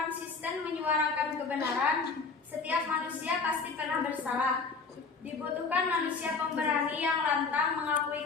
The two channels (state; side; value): quieter; right; 4.5 dB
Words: menyuarakan kebenaran. Setiap manusia pasti pernah bersalah. Dibutuhkan manusia pemberani yang lantang mengakui